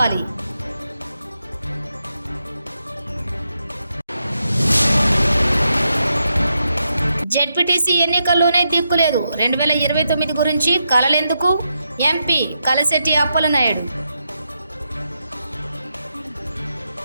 జెడ్పీటీసీ ఎన్నికల్లోనే దిక్కులేదు. 2029 గురించి కలలెందుకు? ఎంపీ కలశెట్టి అప్పలనాయుడు.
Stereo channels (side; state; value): both; inverted; correlation -0.83